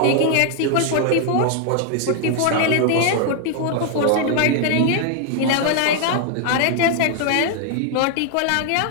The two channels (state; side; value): different; both; correlation 0.00